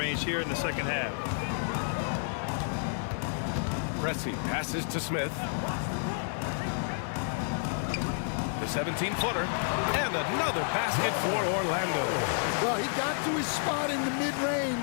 here in the second half. Pressey passes to Smith. The 17-footer. And another basket for Orlando. Well, he got to his spot in the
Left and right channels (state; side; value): silent; right; digital silence